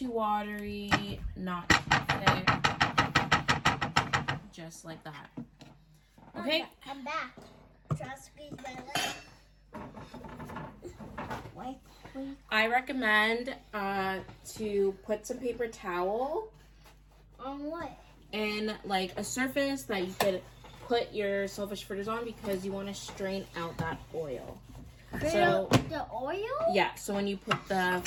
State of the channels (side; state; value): both; identical; correlation 1.00